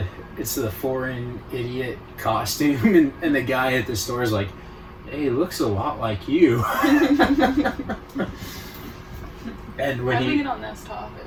it's the foreign idiot costume, and the guy at the store is like, "Hey, it looks a lot like you." And when we get on this topic?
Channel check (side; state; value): both; identical; correlation 1.00